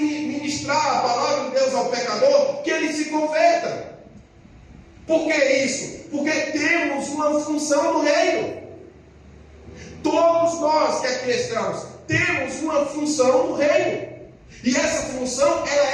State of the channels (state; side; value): identical; both; correlation 1.00